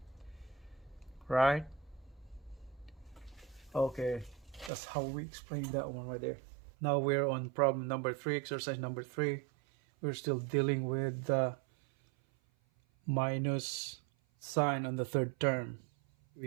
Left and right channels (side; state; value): left; drops out; at 4.7 s